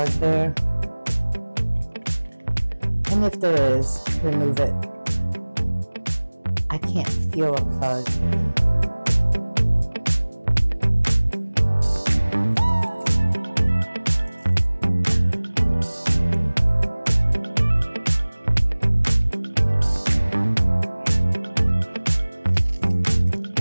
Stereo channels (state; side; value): inverted; both; correlation -1.00